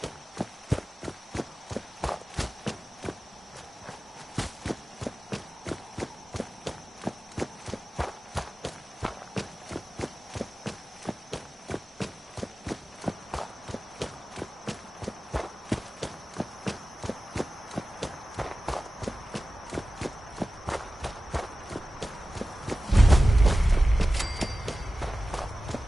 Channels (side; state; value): both; normal; correlation 0.95